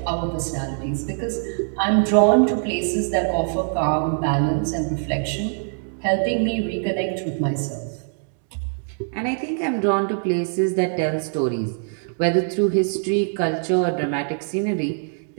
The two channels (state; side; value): silent; left; digital silence